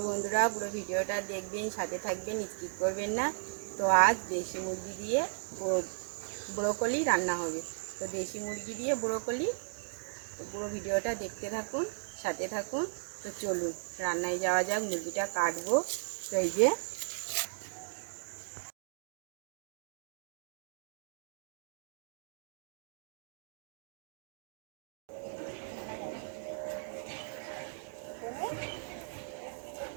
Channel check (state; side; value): silent; left; digital silence